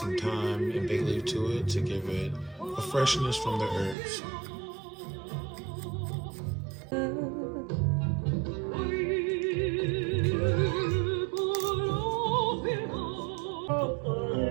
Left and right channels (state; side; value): drops out; left; at 4.0 s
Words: thyme and bay leaf to it to give it a freshness from the herbs.